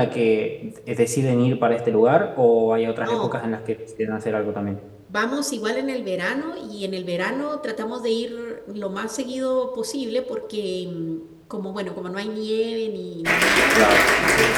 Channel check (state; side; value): identical; both; correlation 1.00